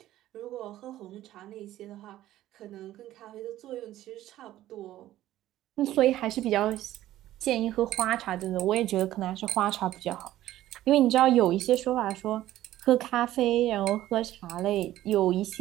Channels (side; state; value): left; quieter; 14.1 dB